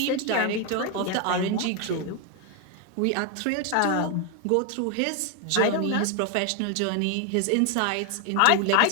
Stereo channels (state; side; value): different; both; correlation 0.01